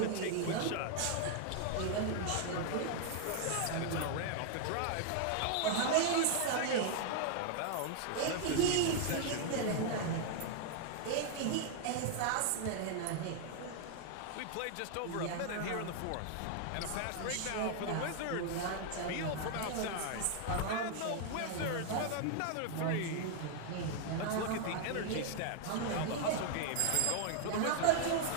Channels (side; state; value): both; different; correlation 0.00